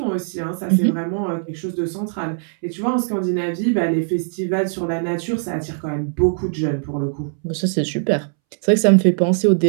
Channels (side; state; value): left; silent; 65 dB below the other